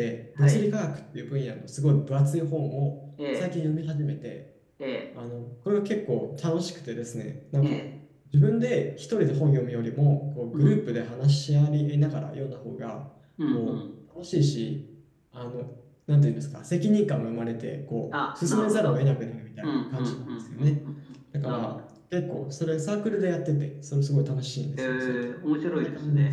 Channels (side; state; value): both; identical; correlation 1.00